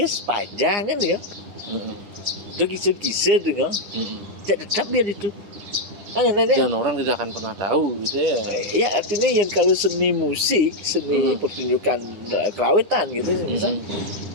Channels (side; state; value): left; late; 9.8 ms